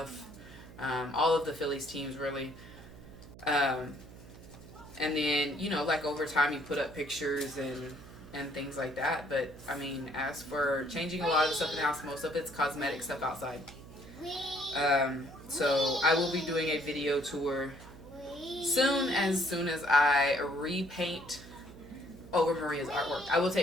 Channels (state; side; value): noise; right; hum, 17 dB below the sound